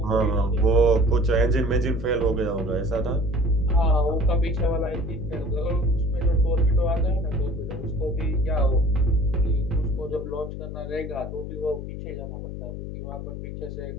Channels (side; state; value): left; noise; hum, 8 dB below the sound